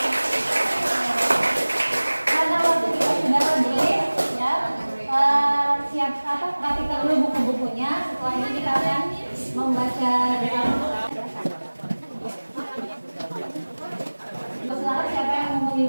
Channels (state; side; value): inverted; both; correlation -1.00